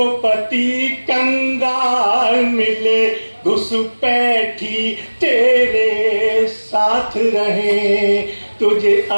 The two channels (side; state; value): both; inverted; correlation -1.00